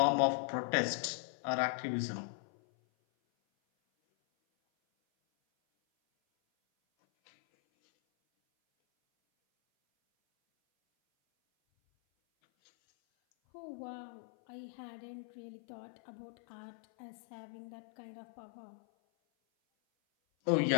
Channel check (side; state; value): right; silent; 52 dB below the other